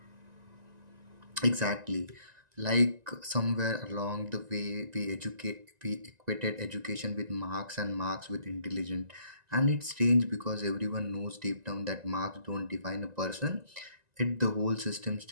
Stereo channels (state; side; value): late; left; 1.9 ms